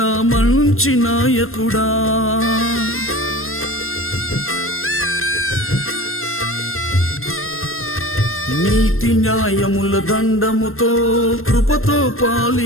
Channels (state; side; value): late; right; 0.61 ms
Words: మంచి నాయకుడా. నీతి న్యాయముల దండముతో కృపతో